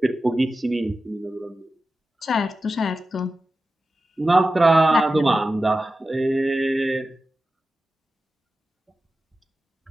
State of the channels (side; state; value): both; normal; correlation 0.93